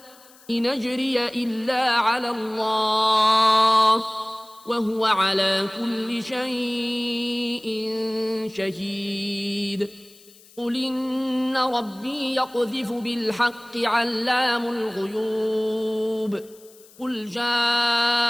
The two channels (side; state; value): left; noise; hiss, 25 dB below the sound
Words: إن أجري إلا على الله وهو على كل شيء شهيد. قل إن ربي يقذف بالحق علام الغيوب. قل جاء